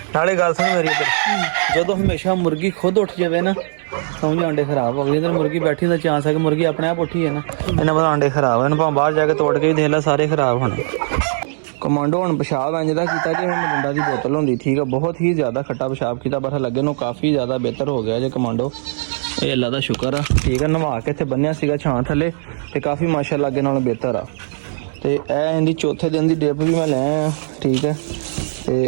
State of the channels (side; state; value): left; silent; digital silence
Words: ਨਾਲੇ ਗੱਲ ਸੁਣ ਮੇਰੀ ਇੱਧਰ, ਜਦੋਂ ਹਮੇਸ਼ਾ ਮੁਰਗੀ ਖੁਦ ਉੱਠ ਜਾਵੇ ਨਾ ਸਮਝ ਆਂਡੇ ਖਰਾਬ ਹੋ ਗਏ। ਇਧਰ ਮੁਰਗੀ ਬੈਠੀ ਦਾ ਚਾਂਸ ਹੈ ਕਿ ਮੁਰਗੀ ਆਪਣੇ ਆਪ ਉੱਠੀ ਹੈ ਨਾ, ਇਹਨਾਂ ਪਤਾ ਆਂਡੇ ਖਰਾਬ ਹਨ। ਭਾਵੇਂ ਬਾਹਰ ਜਾ ਕੇ ਤੋੜ ਕੇ ਵੀ ਦੇਖ ਲੈ, ਸਾਰੇ ਖਰਾਬ ਹੋਣੇ। ਕਮਾਂਡੋ ਹੁਣ ਪਿਸ਼ਾਬ ਇੰਝ ਦਾ ਕੀਤਾ ਜਿਵੇਂ ਮਰਿੰਡਾ ਦੀ ਬੋਤਲ ਹੁੰਦੀ। ਠੀਕ ਆ, ਬਹੁਤ ਹੀ ਜ਼ਿਆਦਾ ਖੱਟਾ ਪਿਸ਼ਾਬ ਕੀਤਾ, ਪਰ ਲੱਗੇ ਨੂੰ ਕਾਫੀ ਜ਼ਿਆਦਾ ਬਿਹਤਰ ਹੋ ਗਿਆ ਜੇ ਕਮਾਂਡੋ। ਇਹ ਅੱਲਾ ਦਾ ਸ਼ੁਕਰ ਆ। ਠੀਕ ਆ, ਨਵਾ ਕੇ ਇੱਥੇ ਬੰਨਿਆ ਸੀਗਾ ਛਾਂ ਥੱਲੇ ਤੇ ਕਾਫੀ ਮਾਸ਼ਾਅੱਲਾ ਅੱਗੇ ਨਾਲੋਂ ਬਿਹਤਰ ਆ। ਤੇ ਇਹ ਇਹਦੀ ਚੌਥੇ ਦਿਨ ਦੀ ਡ੍ਰਿਪ ਵੀ ਮੈਂ ਲੈ ਆਇਆ। ਠੀਕ ਹੈ,